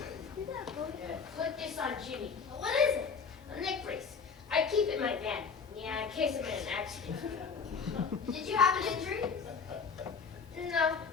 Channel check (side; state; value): right; quieter; 5.6 dB